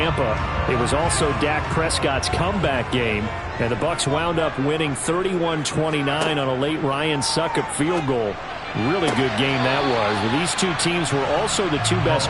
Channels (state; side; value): identical; both; correlation 1.00